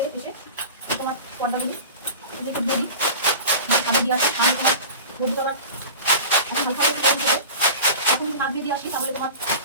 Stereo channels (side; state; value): both; inverted; correlation -0.36